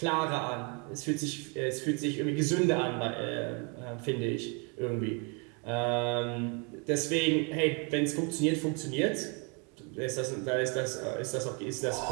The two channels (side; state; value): left; quieter; 34.2 dB